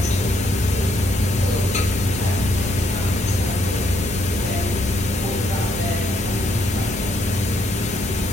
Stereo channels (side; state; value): both; normal; correlation 0.73